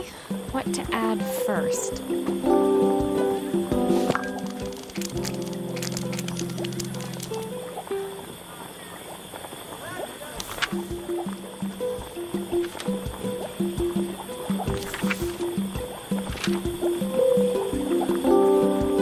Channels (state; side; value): identical; both; correlation 1.00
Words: What to add first?